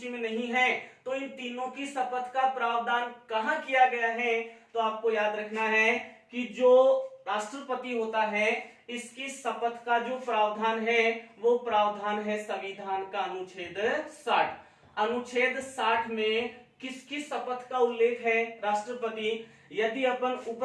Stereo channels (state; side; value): identical; both; correlation 1.00